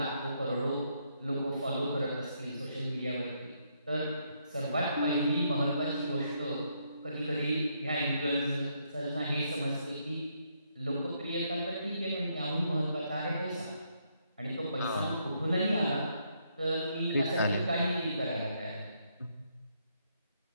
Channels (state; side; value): inverted; both; correlation -0.75